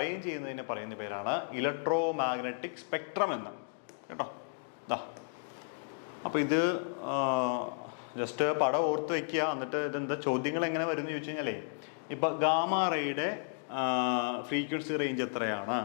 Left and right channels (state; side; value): silent; right; digital silence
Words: ചെയ്യുന്നതിനെ പറയുന്ന പേരാണ് electromagnetic spectrum എന്ന്. കേട്ടോ, അപ്പോൾ ഇത് just പടം ഓർത്ത് വയ്ക്കുക. എന്നിട്ട് ഇതെന്താ ചോദ്യങ്ങൾ എങ്ങനെ വരും എന്ന് ചോദിച്ചു കഴിഞ്ഞാലേ, ഇപ്പം ഗാമാ റേയുടെ ഫ്രീക്വൻസി റേഞ്ച് എത്രയാണ്,